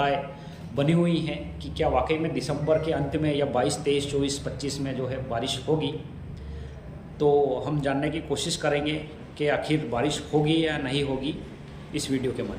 बनी हुई हैं कि क्या वाकई में दिसंबर के अंत में या 22, 23, 24, 25 में जो है बारिश होगी। तो हम जानने की कोशिश करेंगे कि आखिर बारिश होगी या नहीं होगी इस वीडियो के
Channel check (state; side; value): identical; both; correlation 1.00